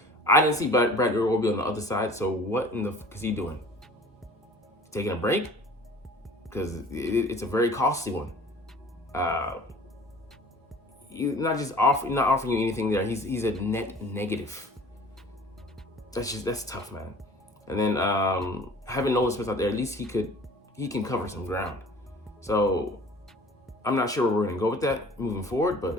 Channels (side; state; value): both; normal; correlation 0.47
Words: I didn't see Bradley Roby on the other side, so what in the fuck is he doing? Taking a break? Because it's a very costly one. Not offering you anything there. He's a net negative. That's tough, man. And then having Nolan Smith out there, at least he can cover some ground. So I'm not sure where we're gonna go with that moving forward,